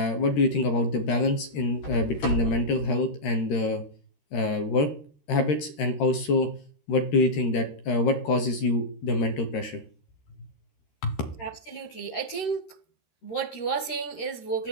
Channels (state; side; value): late; right; 13 ms